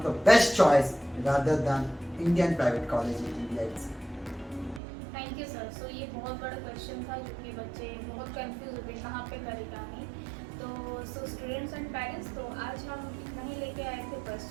the best choice rather than Indian private college in India. Thank you sir. So ये बहुत बड़ा क्वेश्चन था जो कि बच्चे बहुत कंफ्यूज होते हैं कहाँ पे करेगा नहीं, तो सो स्टूडेंट्स एंड पेरेंट्स, तो आज हम इतना ही लेके आए थे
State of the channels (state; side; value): drops out; left; at 4.8 s